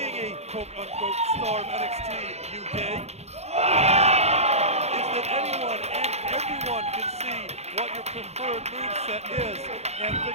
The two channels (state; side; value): late; left; 0.31 ms